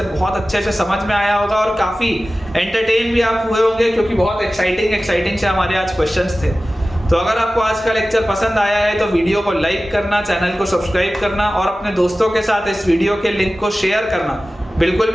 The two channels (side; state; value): both; normal; correlation 0.96